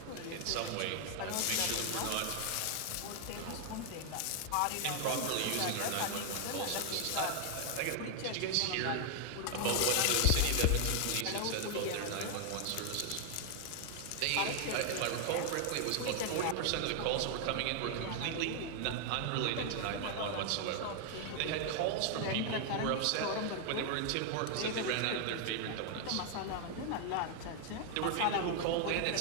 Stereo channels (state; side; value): different; both; correlation 0.00